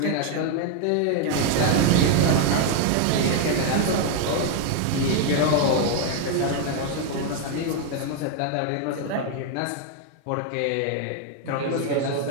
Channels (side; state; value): both; different; correlation 0.01